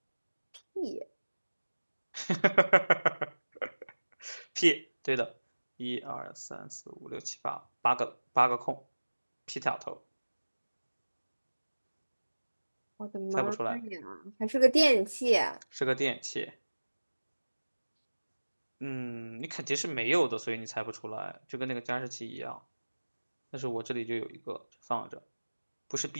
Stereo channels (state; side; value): inverted; both; correlation -1.00